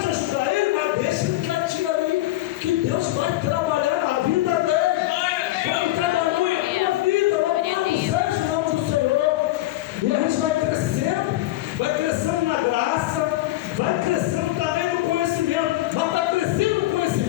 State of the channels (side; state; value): right; quieter; 16.5 dB